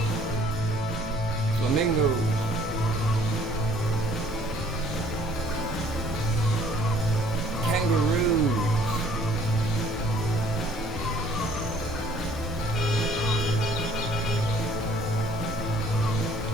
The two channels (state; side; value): normal; both; correlation 0.57